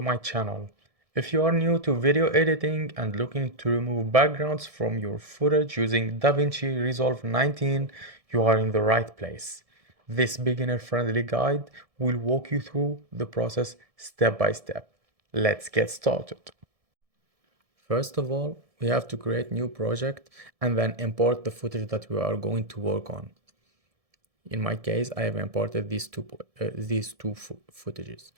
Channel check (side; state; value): left; late; 1.7 ms